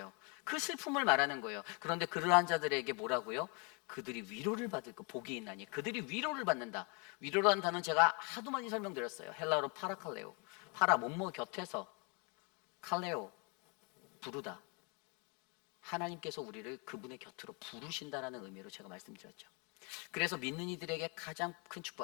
그 슬픔을 말하는 거예요. 그런데 그러한 자들에게 뭐라고요? 그들이 위로를 받을 거, 복이 있나니 그들이 위로를 받는다. 위로라는 단어는 제가 하도 많이 설명드렸어요. 헬라어로 파라칼레오, 파라 몸모 곁에서, 칼레오 부르다. 하나님께서 우리를 그분의 곁으로 부르신다라는 의미로 제가 말씀드렸죠. 그래서 믿는 이들에게 가장 큰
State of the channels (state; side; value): quieter; right; 32.9 dB